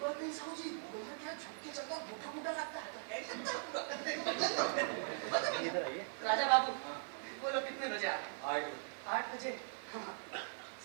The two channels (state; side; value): silent; left; digital silence